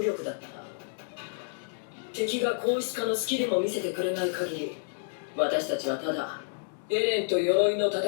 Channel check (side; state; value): right; silent; digital silence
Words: だった敵が硬質化のスキルも見せてくれない限り私たちはただエレンと鎧の戦